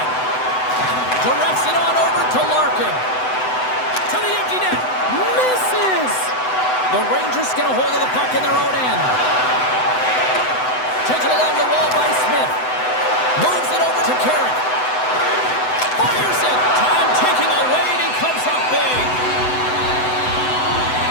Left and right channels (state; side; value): late; right; 7.9 ms